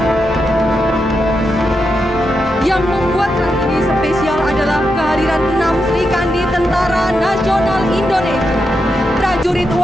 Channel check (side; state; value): both; normal; correlation 0.85